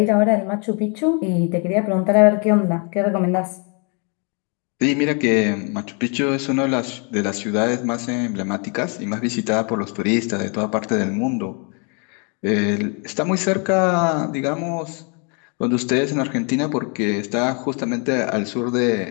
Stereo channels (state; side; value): quieter; right; 36.2 dB